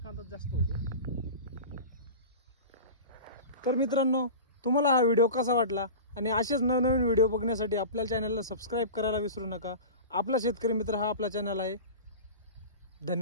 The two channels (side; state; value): both; inverted; correlation -0.33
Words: जास्त होतो। तर मित्रांनो, तुम्हाला हा व्हिडिओ कसा वाटला आणि असेच नवनवीन व्हिडिओ बघण्यासाठी आपल्या चॅनलला सबस्क्राईब करायला विसरू नका। आपला शेतकरी मित्र हा आपला चॅनल आहे।